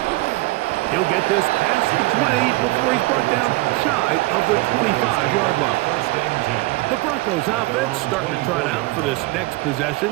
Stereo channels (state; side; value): quieter; left; 21.1 dB